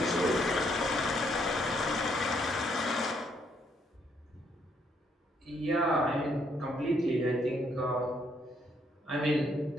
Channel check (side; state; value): both; normal; correlation 0.71